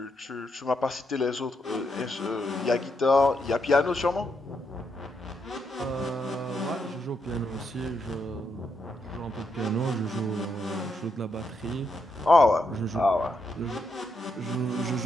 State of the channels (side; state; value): both; normal; correlation 0.80